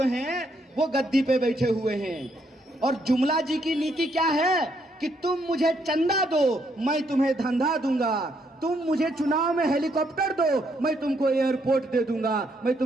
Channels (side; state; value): both; normal; correlation 0.74